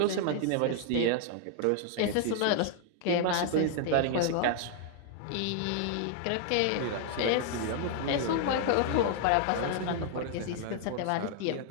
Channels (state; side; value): different; both; correlation 0.00